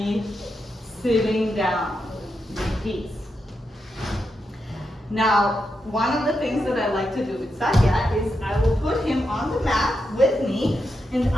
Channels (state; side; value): normal; both; correlation 0.85